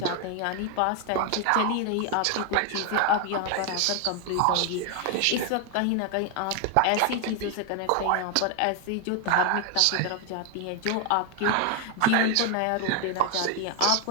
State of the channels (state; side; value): different; both; correlation 0.01